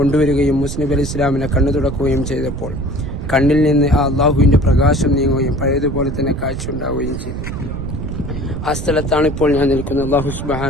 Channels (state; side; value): noise; right; rumble, 6 dB below the sound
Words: മൂസ നബി അലൈഹി സ്വലാമിനെ കണ്ണു തുടക്കുകയും ചെയ്തപ്പോൾ കണ്ണിൽ നിന്ന് ആ അള്ളാഹുവിന്റെ പ്രകാശം നീങ്ങുകയും പഴയതുപോലെ തന്നെ കാഴ്ച ഉണ്ടാവുകയും ചെയ്തു. ആ സ്ഥലത്താണ് ഇപ്പോൾ ഞാൻ നിൽക്കുന്നത്. അല്ലാഹു